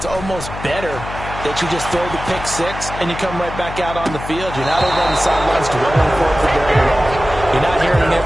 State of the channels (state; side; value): noise; left; hum, 10 dB below the sound